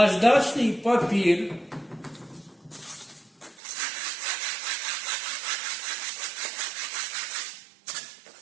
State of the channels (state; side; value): drops out; left; at 3.6 s